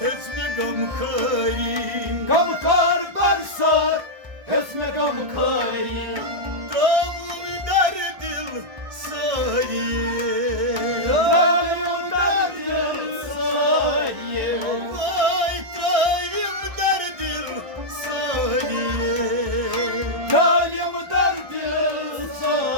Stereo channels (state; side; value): late; left; 1.6 ms